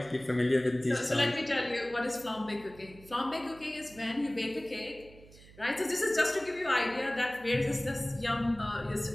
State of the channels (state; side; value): noise; right; hum, 22 dB below the sound